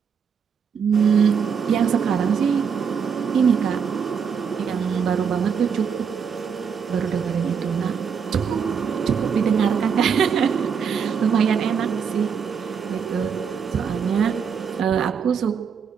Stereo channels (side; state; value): left; quieter; 6.7 dB